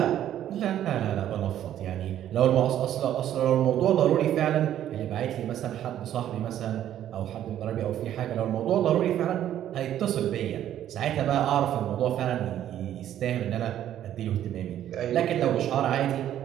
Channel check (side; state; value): left; quieter; 11.4 dB